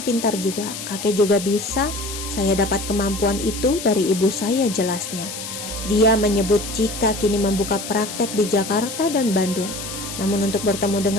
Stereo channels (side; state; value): left; noise; hiss, 8 dB below the sound